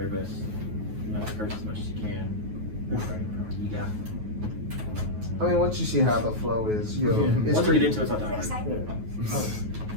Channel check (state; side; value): late; left; 9.4 ms